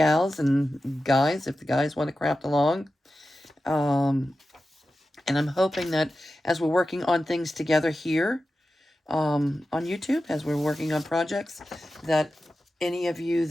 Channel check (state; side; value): normal; both; correlation 0.93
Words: and guys, if the guys want to craft along. And I'm hoping that as we're working on things together here on YouTube, as we're working on projects, that any of you